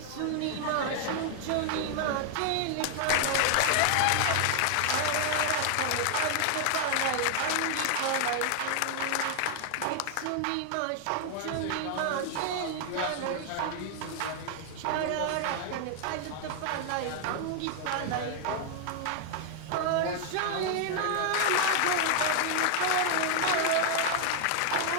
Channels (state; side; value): different; both; correlation 0.00